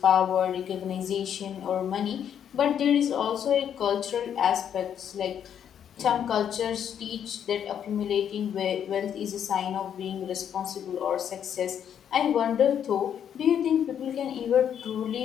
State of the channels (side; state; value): right; quieter; 8.9 dB